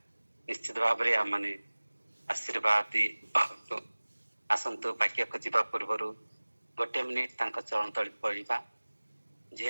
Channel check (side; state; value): both; inverted; correlation -1.00